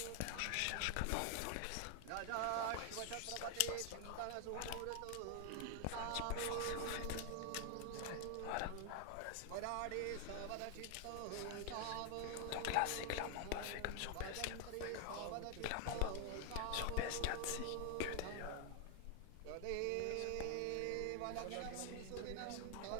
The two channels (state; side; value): different; both; correlation 0.00